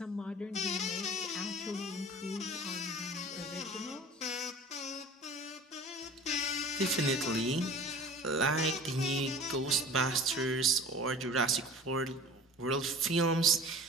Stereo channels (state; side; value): normal; both; correlation 0.41